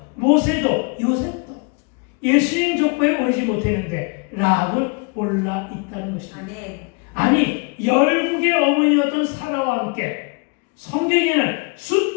모세도 요셉도 예수님 족보에 오르지 못했는데 라합은 올라 있다는 것입니다. 아니 열국의 어머니였던 사라와 함께 성경에는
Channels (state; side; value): quieter; right; 32.1 dB